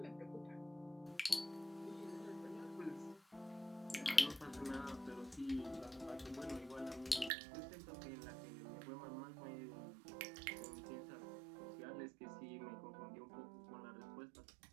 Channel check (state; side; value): drops out; left; at 7.3 s